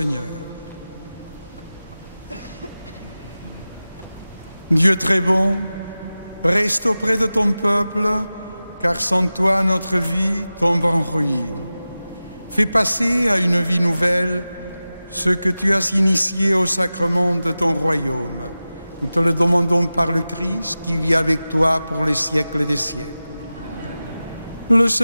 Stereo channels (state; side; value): inverted; both; correlation -0.95